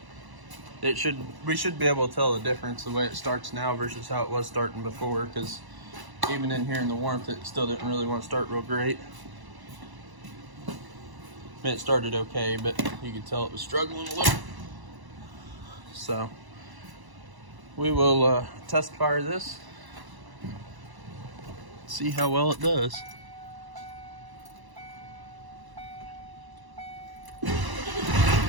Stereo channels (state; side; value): late; left; 1.0 ms